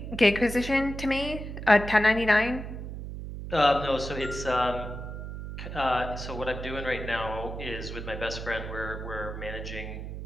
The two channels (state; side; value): noise; right; hum, 8 dB below the sound